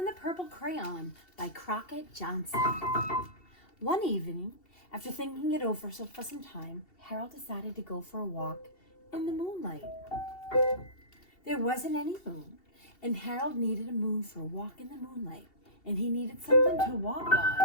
the Purple Crayon by Crockett Johnson. One evening, after thinking it over for some time, Harold decided to go for a walk in the moonlight. There wasn't any moon, and Harold needed a moon for a walk in the moonlight, and he needed something to walk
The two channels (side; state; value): right; late; 2.7 ms